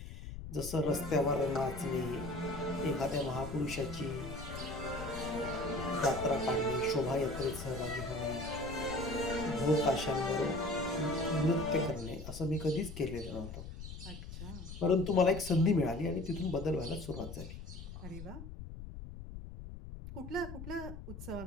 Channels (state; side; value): noise; left; rumble, 10 dB below the sound